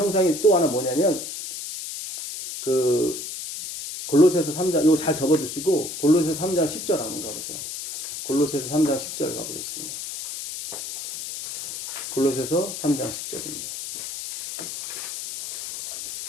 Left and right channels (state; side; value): noise; left; hiss, 7 dB below the sound